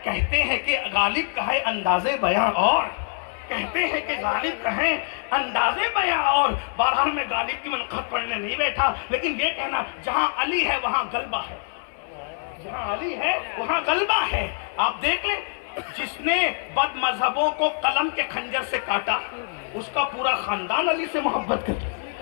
کہتے ہیں کہ غالب کا ہے انداز بیان اور، کہتے ہیں کہ غالب کا ہے انداز بیان اور۔ بہرحال میں غالب کی منقبت پڑھنے نہیں بیٹھا، لیکن یہ کہنا جہاں علی ہے وہاں غلبہ ہے، جہاں علی ہے وہاں غلبہ ہے۔ آپ دیکھ لیں، جس نے بد مذہبوں کو قلم کے خنجر سے کاٹا، اس کا پورا خاندان علی سے محبت کرتا،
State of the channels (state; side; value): silent; right; 57 dB below the other